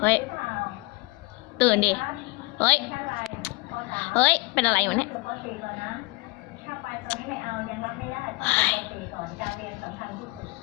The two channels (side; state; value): right; quieter; 24.5 dB